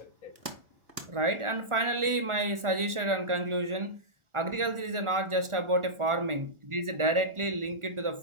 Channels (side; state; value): left; late; 1.4 ms